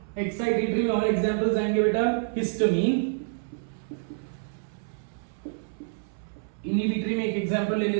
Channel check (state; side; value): silent; left; 60 dB below the other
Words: excitatory. और एग्जांपल्स आएंगे बेटा, हिस्टामिन. इनहिबिटरी में एक एग्जांपल ले